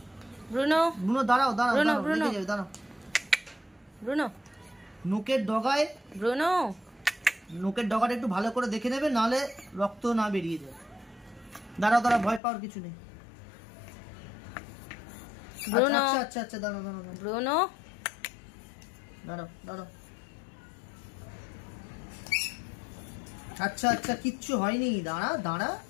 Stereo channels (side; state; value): right; drops out; at 12.4 s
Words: নখের ডগাটা একটু ভালো করে দেখে নেবে, নাহলে রক্ত না বেরিয়ে যায়। দাঁড়াও, ভয় পাওয়ার কিছু নেই। আচ্ছা, দাঁড়াও। আচ্ছা, কিচ্ছু হয়নি, দাঁড়া।